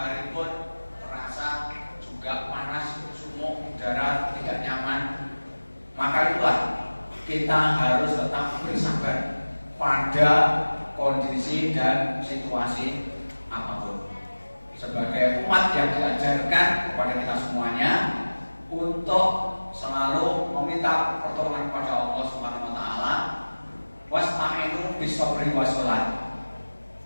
pun terasa juga panas, sumuk, udara tidak nyaman. Maka itulah kita harus tetap bersabar pada kondisi dan situasi apapun. Sebagai umat yang diajarkan kepada kita semuanya untuk selalu meminta pertolongan kepada Allah Subhanahu wa Ta'ala, wasta'inu bis-sabri was-shalah.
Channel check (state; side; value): inverted; both; correlation -1.00